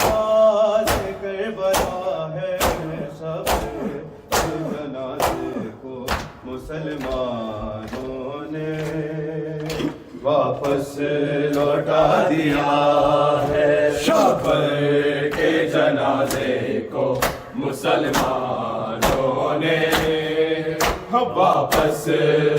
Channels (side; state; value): both; identical; correlation 1.00